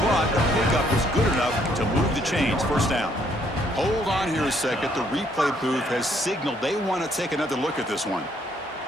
but the pickup is good enough to move the chains. 1st down. Hold on here a second. The replay booth has signaled they want to take another look at this one.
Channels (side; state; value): both; normal; correlation 0.68